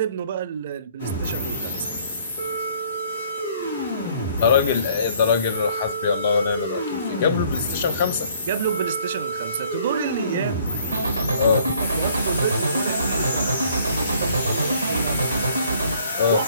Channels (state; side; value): inverted; both; correlation -0.59